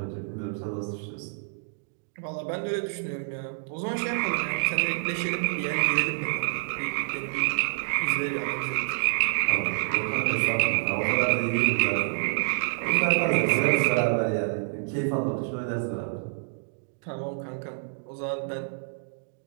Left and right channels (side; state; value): left; silent; digital silence